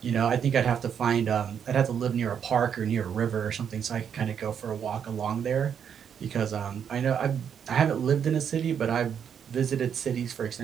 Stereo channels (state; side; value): quieter; left; 8.0 dB